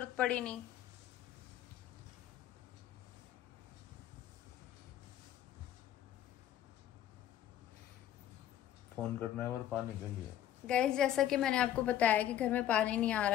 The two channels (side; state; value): right; quieter; 11.6 dB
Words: पड़ी नहीं। फोन करना है और पानी के लिए। गाइस, जैसा कि मैंने आपको बताया कि घर में पानी नहीं आ